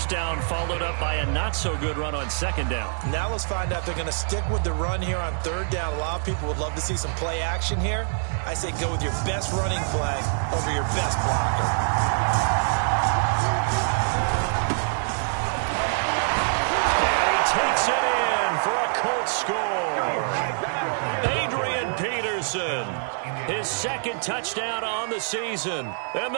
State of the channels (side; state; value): left; silent; digital silence